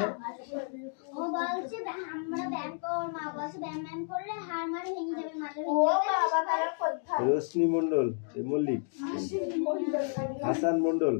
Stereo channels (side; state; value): right; silent; 57 dB below the other